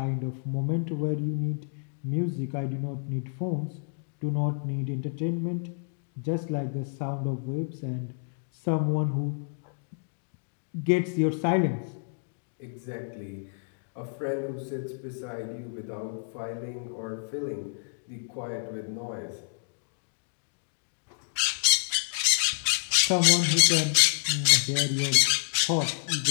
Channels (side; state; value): right; silent; digital silence